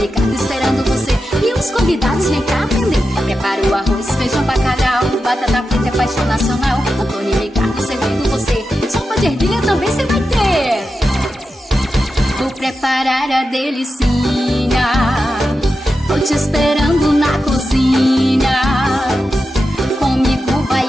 Ricardo esperando você e os convidados vem cá aprender. Prepara o arroz, feijão, bacalhau, batata frita é paixão nacional. Antonia e Ricardo servindo você, sopa de ervilha também você vai ter. Vou preparar a delicinha, tô te esperando na cozinha. Comigo vai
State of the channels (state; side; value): normal; both; correlation 0.90